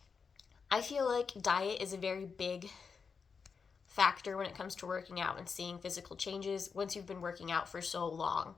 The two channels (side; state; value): right; quieter; 5.6 dB